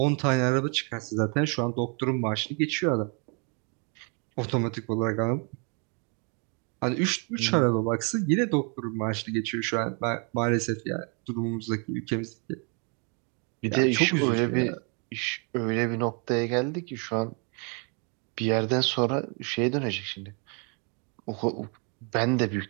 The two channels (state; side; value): quieter; left; 36.3 dB